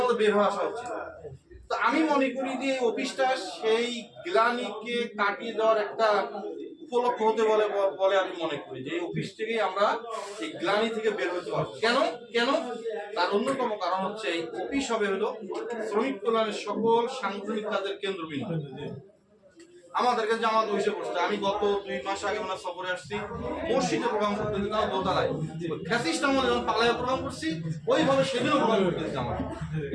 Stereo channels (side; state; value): both; identical; correlation 1.00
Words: আমাদের বের হয়ে আসা উচিত। তো আমি মনে করি যে এই অফিসটা সেই গ্লানিকে কাটিয়ে দেওয়ার একটা উপলক্ষ হতে বলে বলে আমি মনে করি যে এই অফিস থেকেই আমরা এই গ্লানি থেকে বের হতে পারবো। কেন কেন তার অন্যতম কারণ হচ্ছে এই অফিস হবে হলো শ্রমিক কল্যাণের সকল সাংগঠনিক কাজের কেন্দ্রবিন্দু। আমাদেরকে জামাত হইসে পড়ছে। আমি গত 2 মাস আগে ওনার সফরে আসছি, মসজিদে প্রোগ্রাম করতে দিতাম দোতলায়, ফ্যাসিস্ট আমলে যখন পালায় প্রোগ্রাম করছি ওইভাবে সেদিনও প্রোগ্রাম করতে দিতাম।